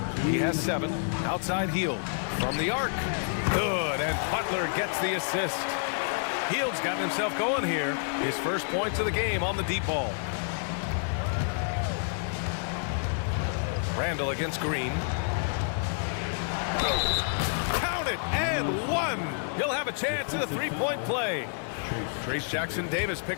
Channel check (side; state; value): right; silent; 55 dB below the other